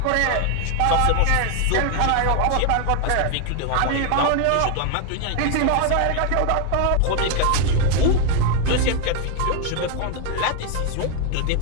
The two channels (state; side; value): different; both; correlation 0.00